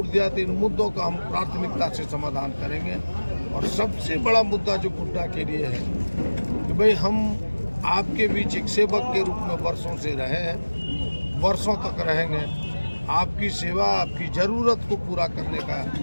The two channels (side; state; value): both; inverted; correlation -1.00